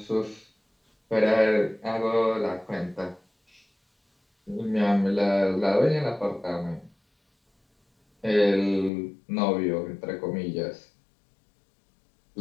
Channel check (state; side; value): drops out; right; at 8.9 s